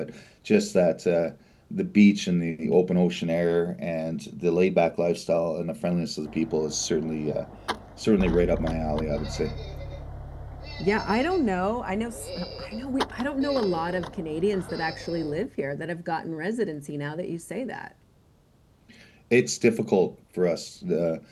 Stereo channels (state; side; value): identical; both; correlation 1.00